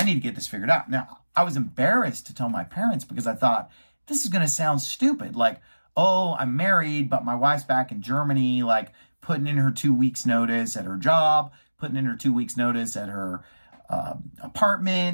need to get this figured out. Now, I was embarrassed to tell my parents, because I thought, this is going to sound stupid. Like, oh, I'm married, but my wife's back in Germany, like putting in her 2 weeks notice at her job, putting in her 2 weeks notice at her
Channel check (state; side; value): inverted; both; correlation -1.00